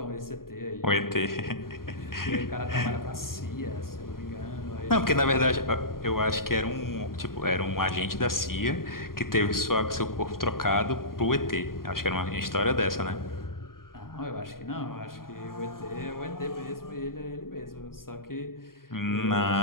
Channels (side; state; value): right; late; 0.92 ms